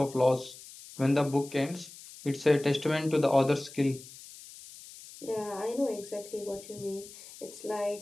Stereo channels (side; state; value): left; noise; hiss, 17 dB below the sound